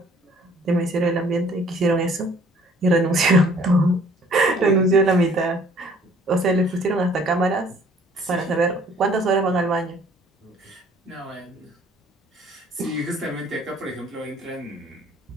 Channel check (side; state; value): both; normal; correlation 0.57